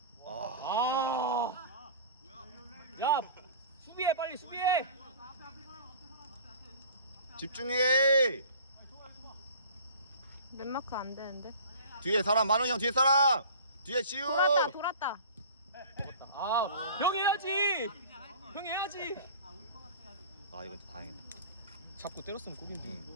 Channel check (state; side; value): inverted; both; correlation -0.43